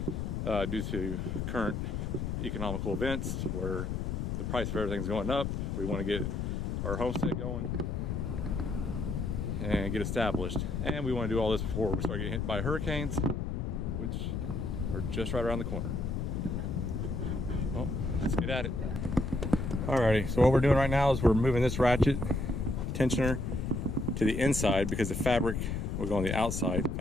due to current economical events where the price of everything's going up. We want to get our homestead going and get established, and we want to do all this before we start getting hit by hurricanes, which are just right around the corner. Well, let's get at it. Alrighty, so what we're doing right now is we're moving this ratchet tensioner to the inside because the fabric will go on the outside, the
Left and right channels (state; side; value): noise; left; rumble, 2 dB below the sound